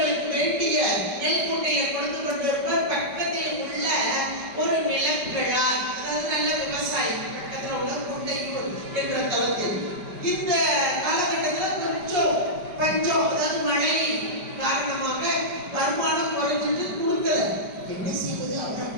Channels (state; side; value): late; left; 5.1 ms